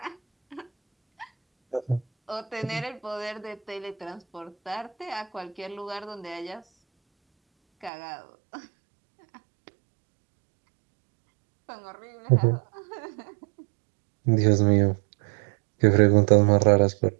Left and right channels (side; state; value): left; drops out; at 7.9 s